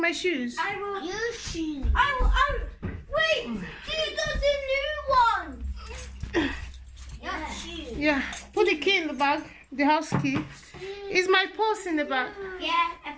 shoes? I will. Your shoes. Wait, these are the new ones. Your shoes. Yeah, put the key in the bag. The house key. Is my purse in the bag? Yeah, I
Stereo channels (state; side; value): identical; both; correlation 1.00